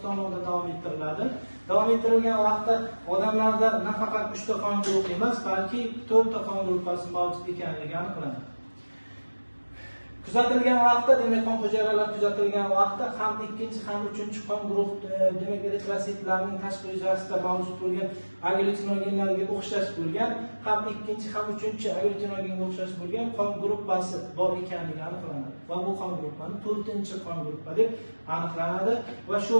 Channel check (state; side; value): inverted; both; correlation -1.00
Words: tomonidan davom ettiriladi. Davom ettirilgan vaqtda odamlarda nafaqat 3 ta qon guruhi emas, balki 4 ta qon guruhi mavjud ekanligi aniqlanadi. Kuzatilgan vaqtda, demak qon hujayralar kuzatilgan vaqtda ham ikkinchi ham uchinchi qon guruh demak eritrositlarning tashqi yuzasida mavjud bo'lgan agglutinogenlarga o'xshash bo'lgan, ham ikkinchi ham uchinchi agglutinogenga o'xshash bo'lgan qon guruhi bor ekanligi aniqlanadi. Va bu qon guruhi 4-chi qon guruhi deb aniqlanadi va shu